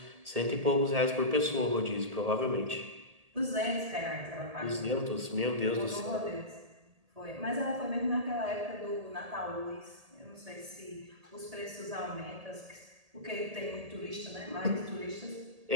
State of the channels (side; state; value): left; late; 1.8 ms